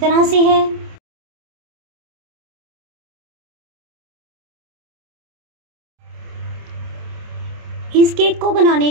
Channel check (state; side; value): late; left; 27 ms